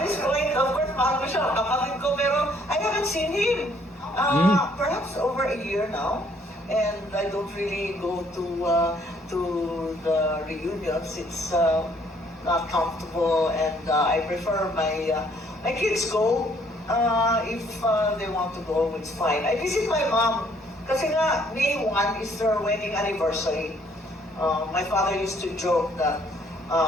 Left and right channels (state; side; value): normal; both; correlation 0.64